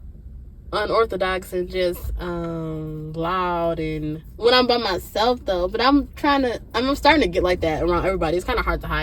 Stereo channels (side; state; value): both; identical; correlation 1.00